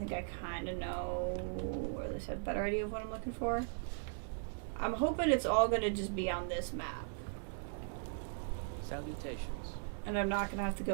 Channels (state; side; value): silent; left; digital silence